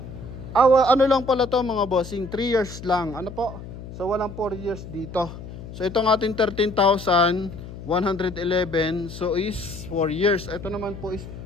ano lang pala to, mga bossing, 3 years lang. Ano po? So walang 4 years dito. So itong ating 13,111, so is 4 years. Ito naman po is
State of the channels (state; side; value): noise; left; hum, 12 dB below the sound